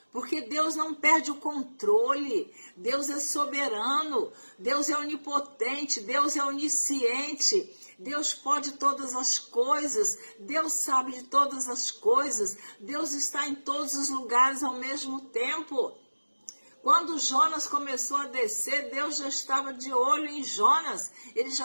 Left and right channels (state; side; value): inverted; both; correlation -1.00